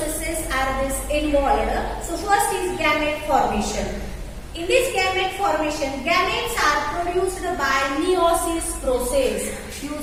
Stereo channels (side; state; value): both; identical; correlation 1.00